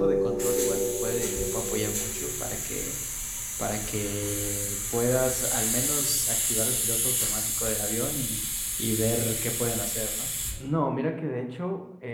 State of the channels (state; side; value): identical; both; correlation 1.00